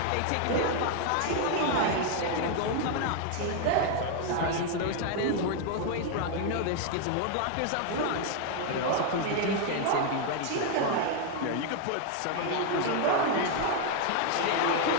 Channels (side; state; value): both; different; correlation 0.00